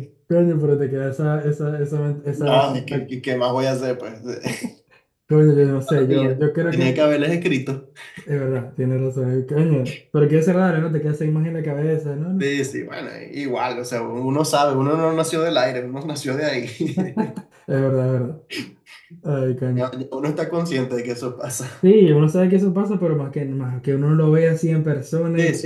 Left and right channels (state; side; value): identical; both; correlation 1.00